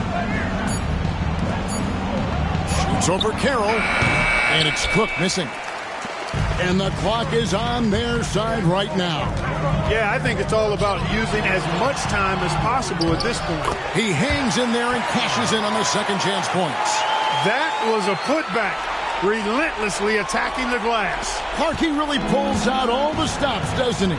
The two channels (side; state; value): both; identical; correlation 1.00